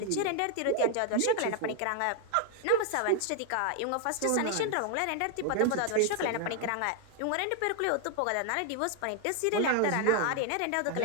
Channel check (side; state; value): both; different; correlation 0.00